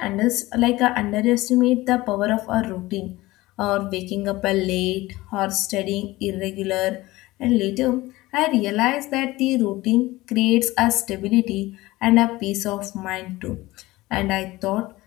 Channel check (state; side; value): quieter; right; 19.1 dB